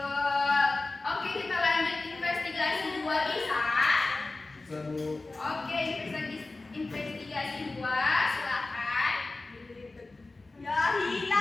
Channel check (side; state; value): right; quieter; 3.3 dB